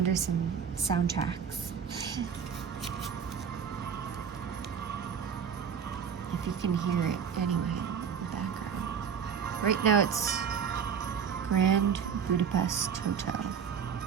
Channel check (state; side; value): quieter; left; 7.3 dB